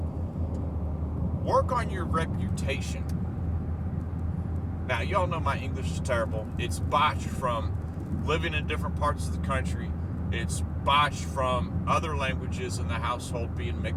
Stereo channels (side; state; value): both; identical; correlation 1.00